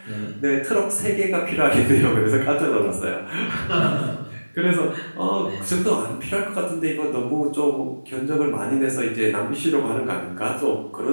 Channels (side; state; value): both; inverted; correlation -1.00